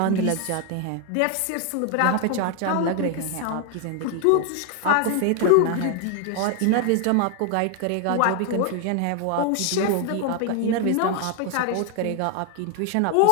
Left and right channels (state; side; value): different; both; correlation 0.01